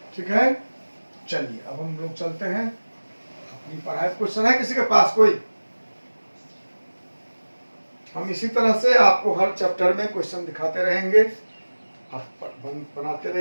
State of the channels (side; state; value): both; inverted; correlation -1.00